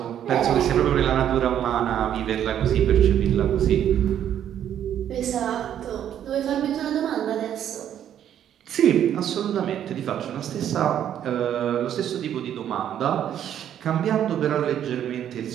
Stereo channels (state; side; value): quieter; left; 10.2 dB